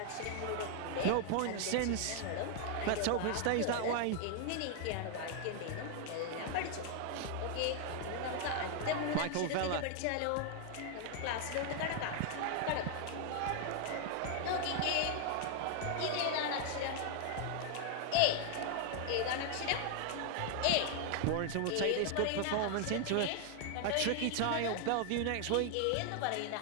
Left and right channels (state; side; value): different; both; correlation 0.00